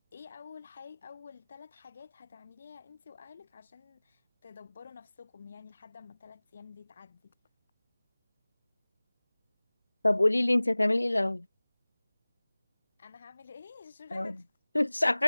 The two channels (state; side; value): inverted; both; correlation -1.00